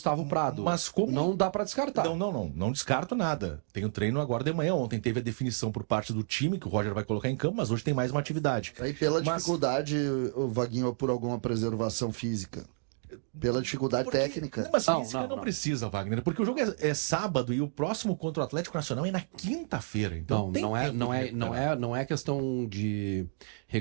Prado. Mas como... Não dá para descartar. Não descarto nada. Tem o treino agora de manhã. Ontem teve a definição por parte do time, que o Roger vai colocar em campo, mas hoje tem mais uma atividade. Aí pela dificuldade, o Vaguinho, por alguma preservação física. pela dificuldade técnica. Mas física não precisa, Wagner, porque o jogo é sábado e o próximo contra o Atlético Nacional é na quinta-feira. Então não é questão de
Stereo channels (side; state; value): left; silent; digital silence